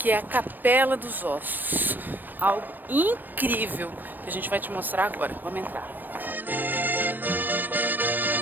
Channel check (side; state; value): left; late; 0.091 ms